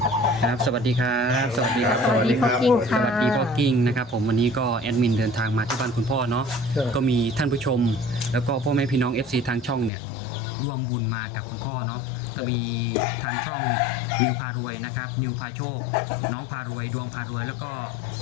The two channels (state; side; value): drops out; right; at 9.9 s